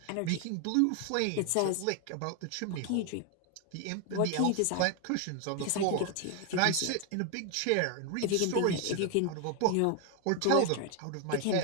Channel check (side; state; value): both; different; correlation 0.01